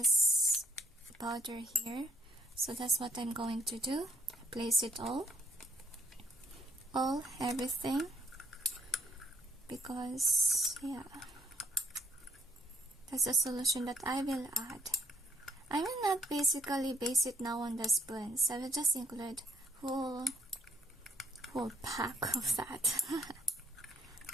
powder here. So that's what I'm going to do. Place it all, everything. Because yeah, that's a solution that I will add. I will not basically base it now on the spoons. I will just include whole pack of that.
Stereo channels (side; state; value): both; normal; correlation 0.67